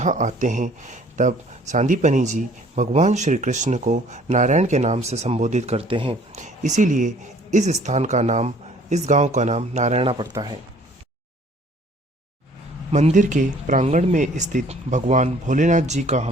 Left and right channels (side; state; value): both; normal; correlation 0.56